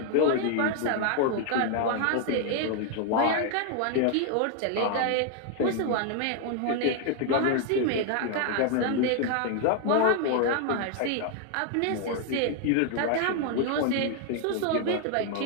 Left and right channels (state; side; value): different; both; correlation 0.00